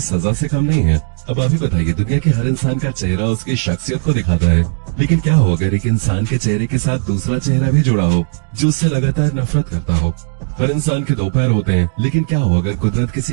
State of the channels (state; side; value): silent; left; digital silence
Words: सजा से कम नहीं है। अब आप ही बताइए, दुनिया के हर इंसान का चेहरा उसकी शख्सियत को दिखाता है, लेकिन क्या हो अगर एक इंसान के चेहरे के साथ दूसरा चेहरा भी जुड़ा हो जो उससे लगातार नफरत करता हो। हर इंसान के 2 पैर होते हैं, लेकिन क्या हो अगर कुदरत